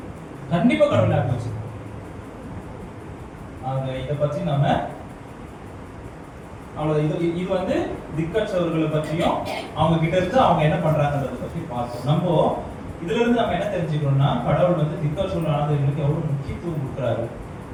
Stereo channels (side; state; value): both; identical; correlation 1.00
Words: கண்டிப்பா கடவுள் ஞாபகம் வச்சுப்பாரு. இதை பத்தி நம்ம அவ்வளவு இது வந்து திக்கற்றவர்களை பற்றியும் அவங்க கிட்ட இருந்து அவங்க என்ன பண்றாங்கன்றத பத்தி பார்த்தோம். நம்ம இதுல இருந்து நம்ம என்ன தெரிஞ்சுக்கணும்னா, கடவுள் வந்து திக்கற்றவர்களுக்கு எவ்வளவு முக்கியத்துவம் கொடுக்குறாரு,